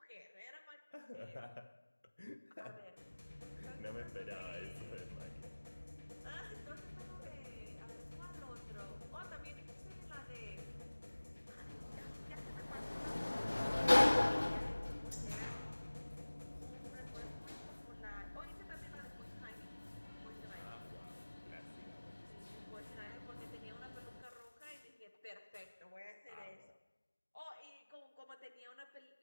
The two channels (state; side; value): inverted; both; correlation -1.00